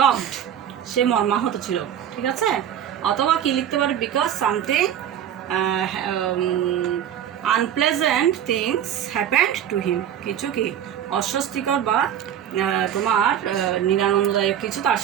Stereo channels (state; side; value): quieter; left; 9.9 dB